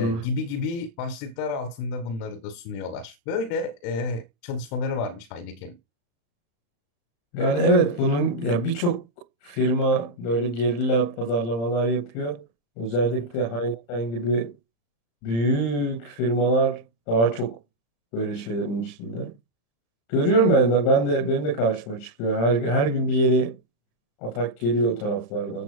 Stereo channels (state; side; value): late; right; 35 ms